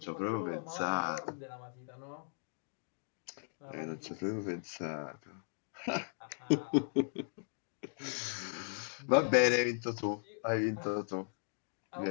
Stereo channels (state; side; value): silent; right; digital silence